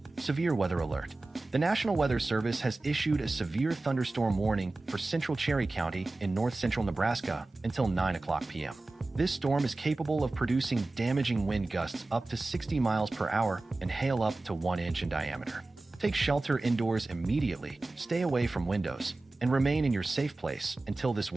Severe weather alert. The National Weather Service has issued a severe thunderstorm warning for central Cherry County in north-central Nebraska until 9 o'clock p.m. This storm is capable of producing damaging wind gusts up to 60 miles per hour and hail up to 1 inch in diameter. Take shelter indoors immediately, stay away from windows, and remain in your safe place until this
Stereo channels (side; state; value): left; quieter; 3.1 dB